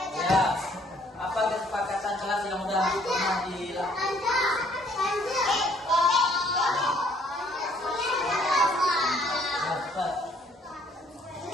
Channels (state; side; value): normal; both; correlation 0.62